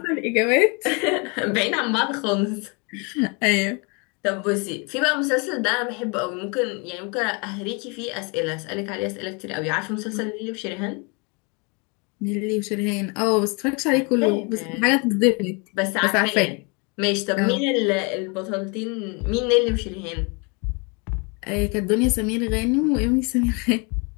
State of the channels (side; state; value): right; quieter; 32.1 dB